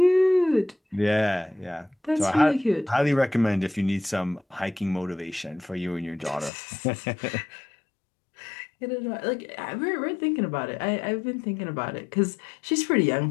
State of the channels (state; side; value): drops out; right; at 6.5 s